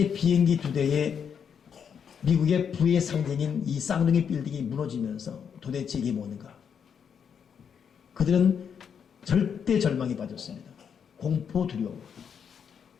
비행기 2대에 미국의 부의 상징인 이 쌍둥이 빌딩이 무너지면서 도대체 이게 뭔가 그들은 절대 절망에 빠졌습니다. 공포 두려움.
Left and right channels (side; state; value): right; quieter; 7.3 dB